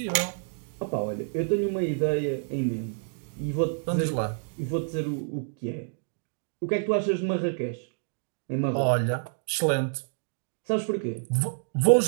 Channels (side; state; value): left; silent; digital silence